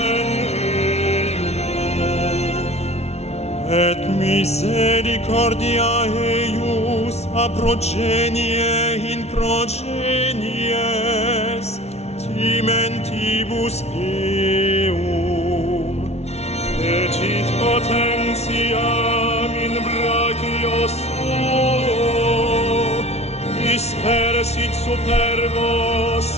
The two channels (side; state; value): right; late; 0.31 ms